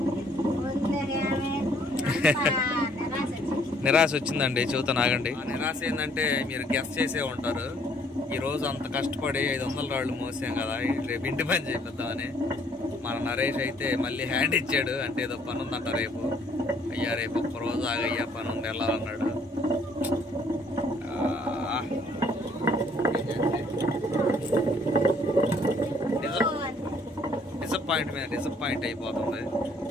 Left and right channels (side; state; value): both; normal; correlation 0.63